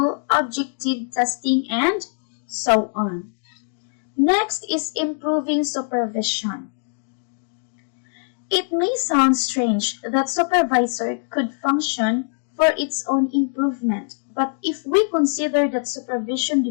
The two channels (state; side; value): silent; right; 62 dB below the other